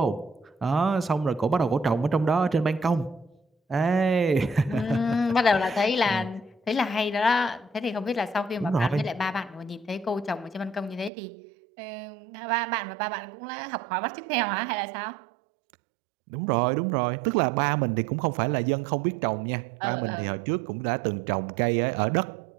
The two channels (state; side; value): drops out; left; at 11.1 s